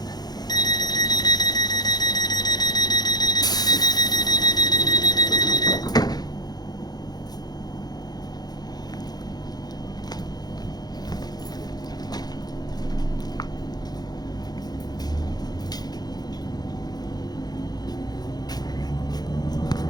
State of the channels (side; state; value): right; late; 0.19 ms